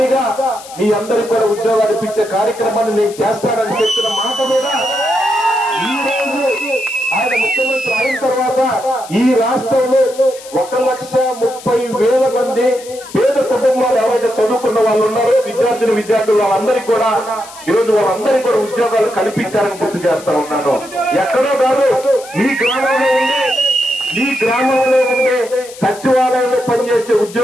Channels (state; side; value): noise; left; hiss, 18 dB below the sound